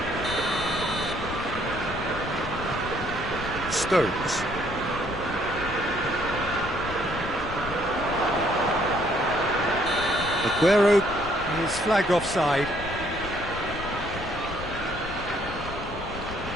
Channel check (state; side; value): noise; left; rumble, 11 dB below the sound